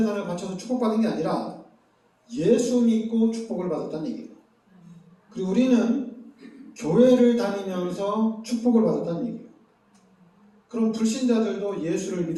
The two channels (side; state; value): both; identical; correlation 1.00